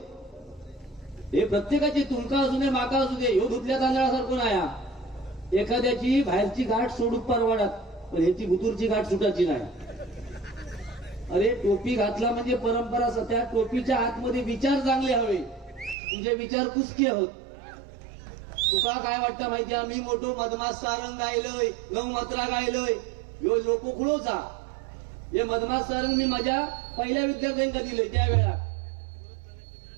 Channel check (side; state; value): left; drops out; at 16.0 s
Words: हे प्रत्येकाचे, तुमका असू दे माका असू दे, ह्यो धुतल्या तांदळासारखं नाही. एखाद्याची बाहेरची गाठ सोडून परवाडात, पण ह्याची भुतूरची गाठ सुटायची नाही. अरे टोपी घातला म्हणजे परंपरा, त्या टोपीच्या आतमध्ये विचार चांगले हवे, तुझे विचार कुसके होत. तुका काय वाटतं माहितीये, मी मोठो मधमास सारंग गायलोय, 9 मात्रा गायलोय, ह्यो लोकोखुळोचा. हे मधमास सारंग मी माझ्या पहिल्या विद्यार्थ्यांका दिलंय त्यावेळा.